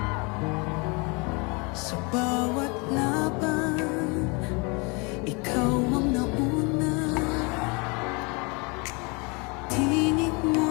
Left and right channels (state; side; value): quieter; right; 30.4 dB